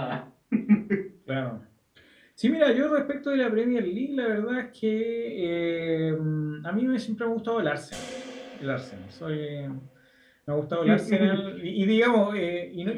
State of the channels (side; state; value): both; identical; correlation 1.00